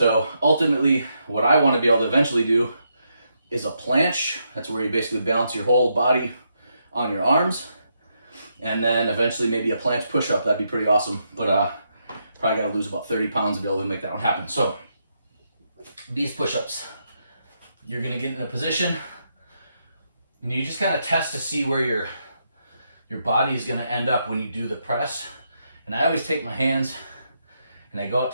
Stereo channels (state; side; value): inverted; both; correlation -0.80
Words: ultimately, what I want to be able to eventually do is a planche. That's where you basically balance your whole body on your arms. And then eventually maybe a planche push-up. That'd be pretty awesome. But probably got to lose about 30 pounds to be able to make that one happen. So these push-ups, you're going to get in a position and you just kind of test to see where your body is going to end up when you do the press. And I always take my hands and I go out